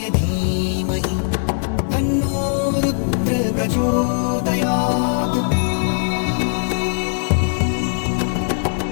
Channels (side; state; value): right; silent; digital silence